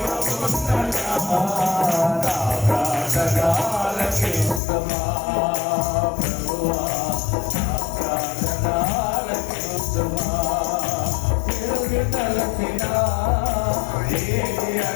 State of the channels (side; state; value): right; drops out; at 4.6 s